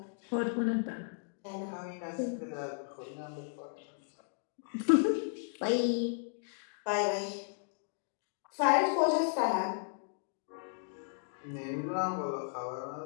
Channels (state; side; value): silent; right; digital silence